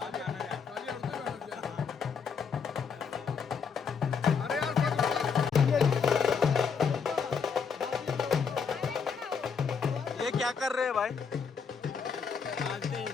ये क्या कर रहे हैं भाई? बांधते हैं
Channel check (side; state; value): right; quieter; 6.0 dB